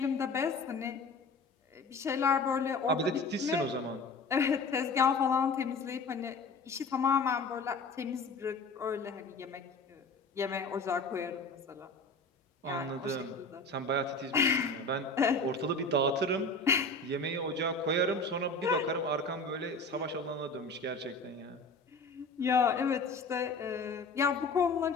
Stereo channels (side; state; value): right; quieter; 3.3 dB